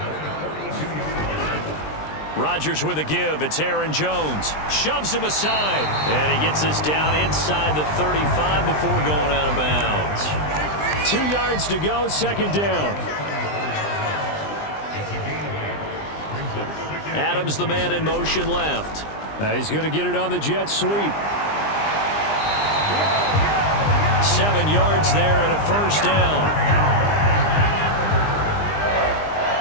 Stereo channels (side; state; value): right; late; 20 ms